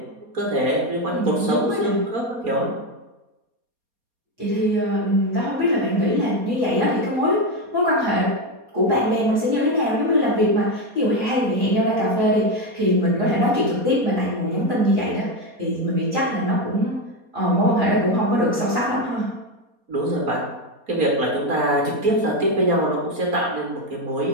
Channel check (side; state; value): left; late; 4.2 ms